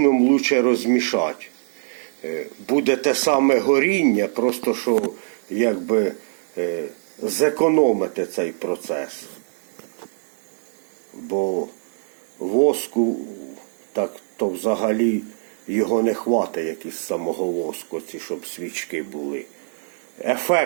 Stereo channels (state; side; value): silent; left; 63 dB below the other